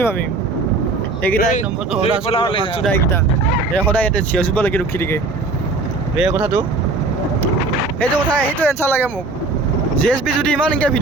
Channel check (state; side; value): quieter; left; 3.5 dB